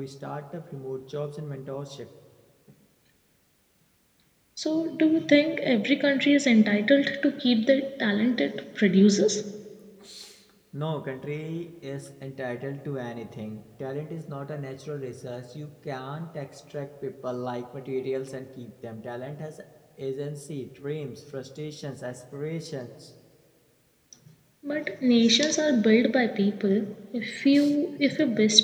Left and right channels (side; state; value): both; identical; correlation 1.00